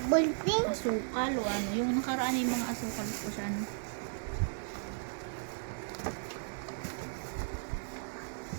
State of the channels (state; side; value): silent; left; digital silence